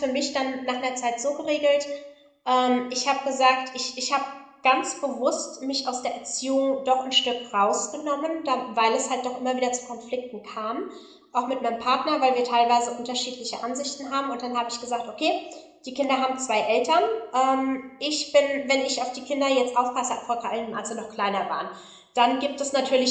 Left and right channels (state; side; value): identical; both; correlation 1.00